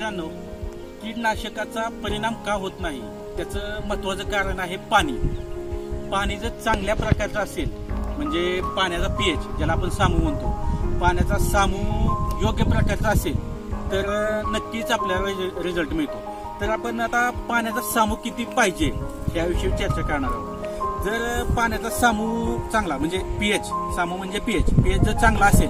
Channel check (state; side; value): identical; both; correlation 1.00